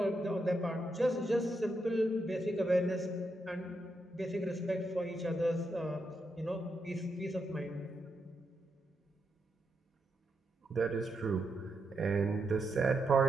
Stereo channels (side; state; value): both; normal; correlation 0.82